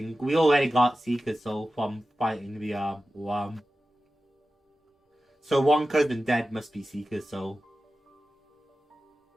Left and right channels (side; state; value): both; normal; correlation 0.94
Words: We already got Seeker's soul from fighting the worm. So 1 cousin dead must be Seeker's soul.